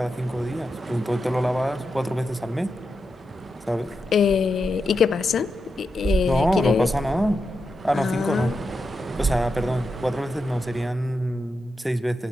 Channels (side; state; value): both; normal; correlation 0.87